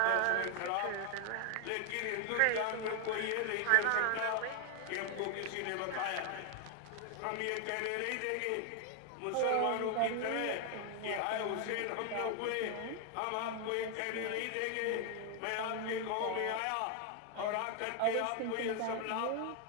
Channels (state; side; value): different; both; correlation 0.00